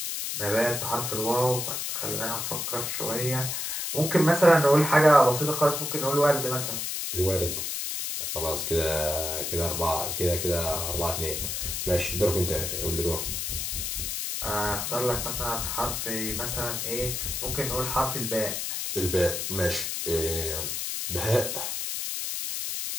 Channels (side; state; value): left; noise; hiss, 3 dB below the sound